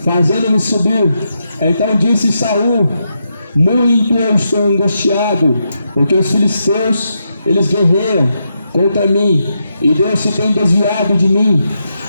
fazendo-me subir? Então disse Saul: muito eu estou angustiado, porque os filisteus, eles guerreiam contra mim, e Deus se tem desviado de mim,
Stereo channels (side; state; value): both; inverted; correlation -0.84